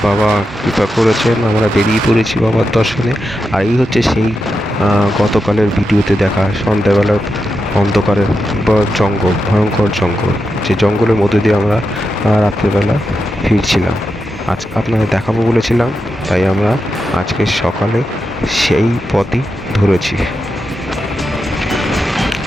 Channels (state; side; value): normal; both; correlation 0.88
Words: বাবা কৃপা করেছেন, আমরা বেরিয়ে পড়েছি বাবার দর্শনে। আর এই হচ্ছে সেই গতকালের ভিডিওতে দেখা সন্ধ্যাবেলা অন্ধকারের জঙ্গল, ভয়ঙ্কর জঙ্গল, যে জঙ্গলের মধ্যে দিয়ে আমরা রাত্রেবেলা ফিরছিলাম। আজ আপনাদের দেখাবো বলেছিলাম, তাই আমরা আজকে সকালে সেই পথই ধরেছি।